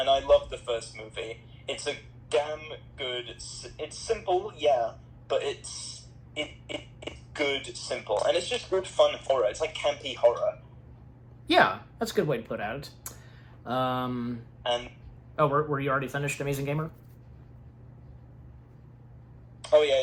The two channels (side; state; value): both; identical; correlation 1.00